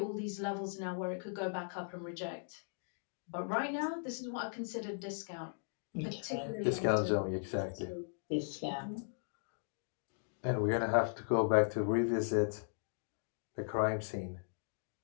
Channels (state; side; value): silent; right; digital silence